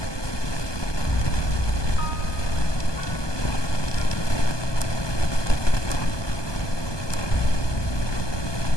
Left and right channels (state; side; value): late; right; 1.2 ms